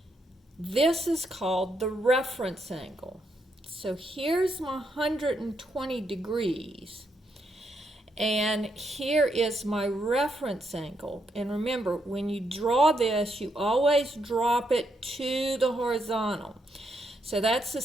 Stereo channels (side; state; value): both; normal; correlation 0.78